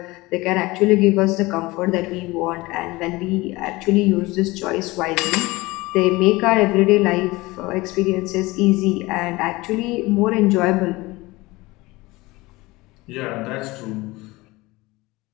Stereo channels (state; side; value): quieter; right; 21.4 dB